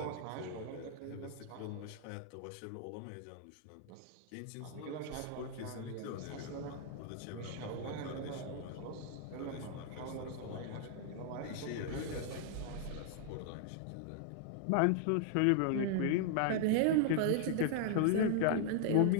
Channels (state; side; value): different; both; correlation -0.01